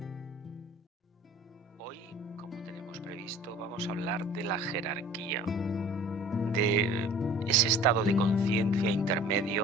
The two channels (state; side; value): normal; both; correlation 0.46